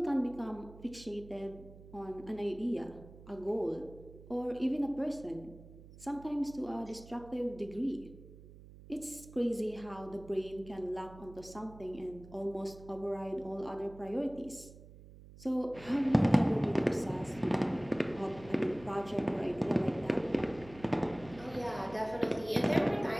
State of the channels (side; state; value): right; noise; hum, 18 dB below the sound